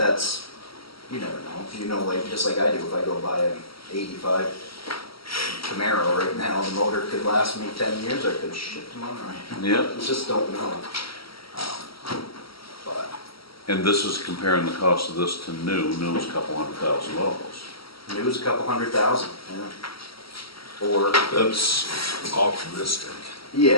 you never know, like, just like I do, if I go buy an 85 Camaro right now, the motor could last me 10 years, I could shit tomorrow. Yeah, You just don't know. But and this is comparing the cost of this to new's a couple $100,000. new's a couple $100,000, yeah. Or That's optimistic.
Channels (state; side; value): late; right; 0.75 ms